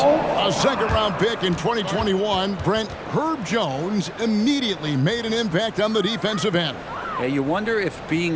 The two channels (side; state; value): both; identical; correlation 1.00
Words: A second-round pick in 2021, Brent Herb Jones immediately made an impact on the defensive end. Yeah, you wonder if